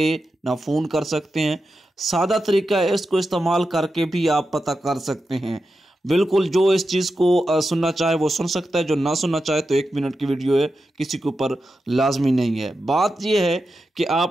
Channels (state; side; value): normal; both; correlation 0.89